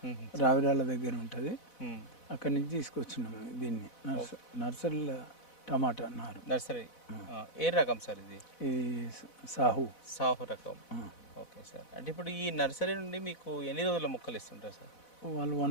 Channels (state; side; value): late; right; 4.1 ms